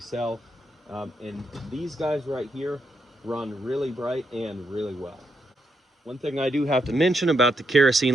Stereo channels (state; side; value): normal; both; correlation 0.80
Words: And these guys right here run really bright and really well. One thing I do have to mention about the